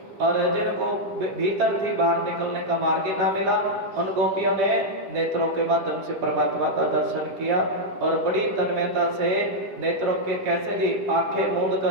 और जिनको भीतर थी, बाहर निकलने का मार्ग ना मिला, उन गोपियों ने नेत्रों के माध्यम से परमात्मा का दर्शन किया। और बड़ी तन्मयता से नेत्रों के, कैसे जी? आंखें मूंद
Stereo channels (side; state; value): left; late; 10 ms